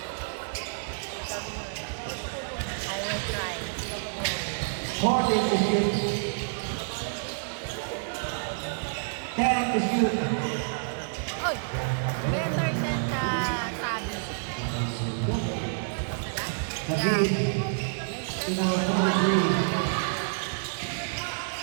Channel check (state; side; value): silent; left; digital silence